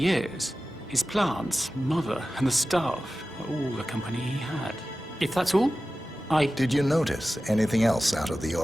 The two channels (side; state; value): both; normal; correlation 0.95